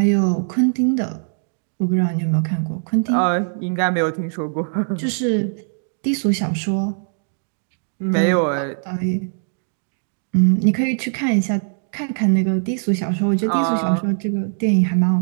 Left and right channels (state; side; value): silent; left; digital silence